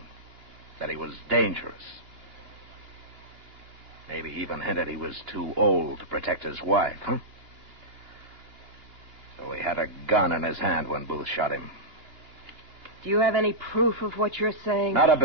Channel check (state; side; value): late; left; 2.8 ms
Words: That he was dangerous. Maybe even hinted he was too old to protect his wife, huh? So he had a gun in his hand when Booth shot him. Do you have any proof of what you're saying? Not a